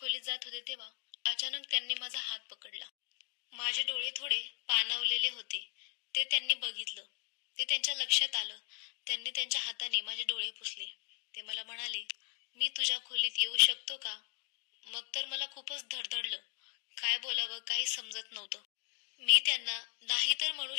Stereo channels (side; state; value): right; quieter; 38.3 dB